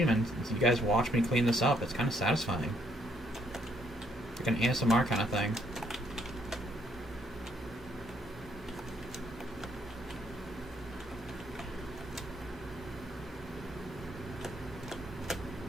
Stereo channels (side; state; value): both; normal; correlation 0.70